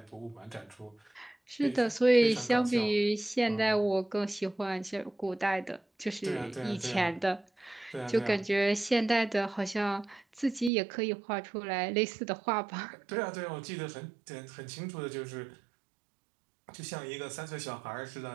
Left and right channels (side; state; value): left; drops out; at 10.7 s